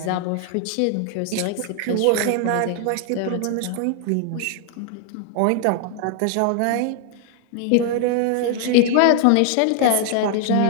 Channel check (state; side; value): different; both; correlation 0.00